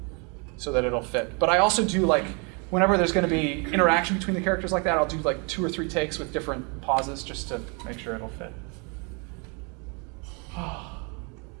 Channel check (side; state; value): left; quieter; 33.7 dB